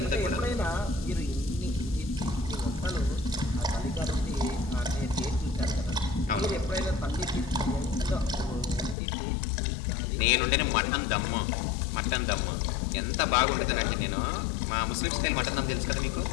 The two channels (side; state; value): right; drops out; at 9.0 s